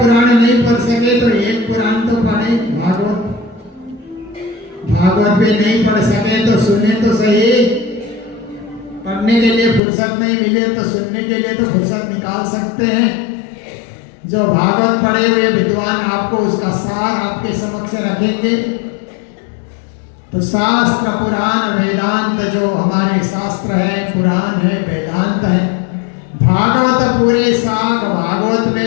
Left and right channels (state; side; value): drops out; right; at 9.8 s